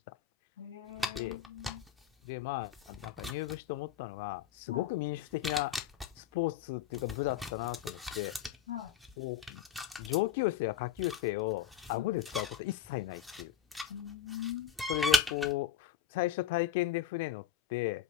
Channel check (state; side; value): quieter; right; 8.7 dB